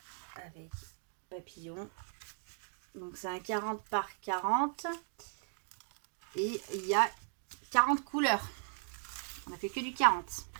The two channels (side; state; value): left; silent; 53 dB below the other